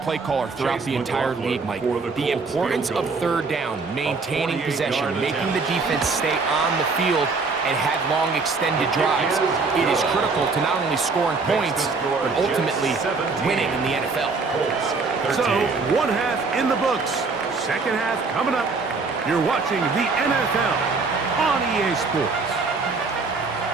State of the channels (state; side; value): quieter; left; 4.2 dB